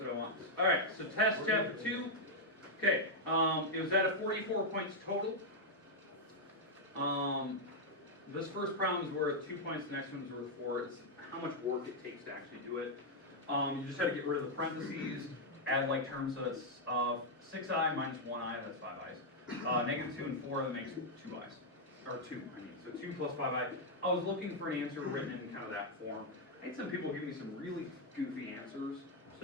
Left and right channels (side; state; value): both; normal; correlation -0.02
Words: what I want. All right, so test chapter 2. Okay, it was at a 44 points total. This first problem is worth 2 points, the next one's worth 4. It's how much work it takes to actually do it. You just had to get rid of the parentheses, add like terms, so it's 6i minus 1i, that's 5i's. Negative 2 and 4, that makes 2i's. Or 2, I mean, so 2 plus 5i. I was looking for an answer written in kind of that form. I had some people give me some really goofy answers,